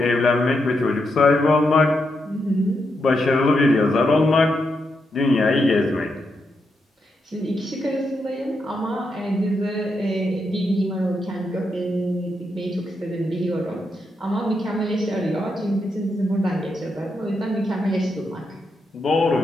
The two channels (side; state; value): both; normal; correlation 0.83